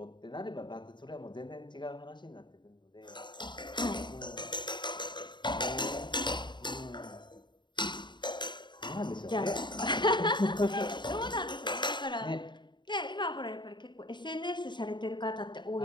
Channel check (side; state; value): right; late; 0.22 ms